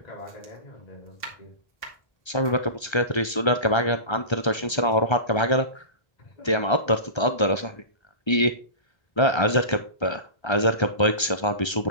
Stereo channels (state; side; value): late; right; 1.3 ms